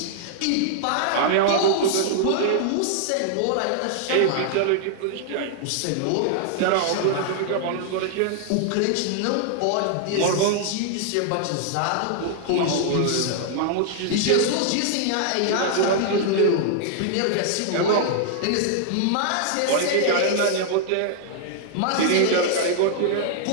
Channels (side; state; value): both; different; correlation 0.00